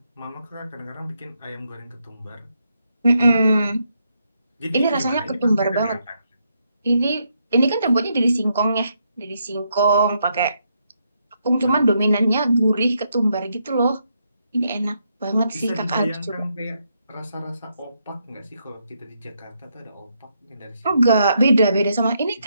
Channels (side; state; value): both; inverted; correlation -0.78